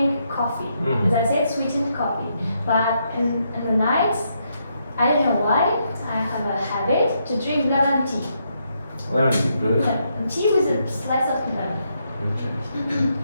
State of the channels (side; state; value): both; inverted; correlation -0.78